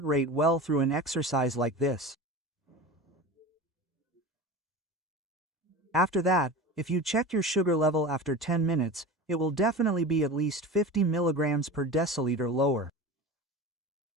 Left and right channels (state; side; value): normal; both; correlation 0.31